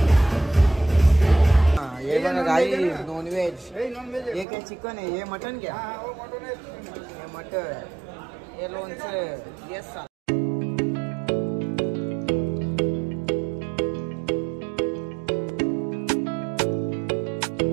ये बघा गाई नॉनव्हेज. हे काय चिकन आहे, हे मटन क्या, हे मटन, हे लोणचं. Yes sir.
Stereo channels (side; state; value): left; drops out; at 4.5 s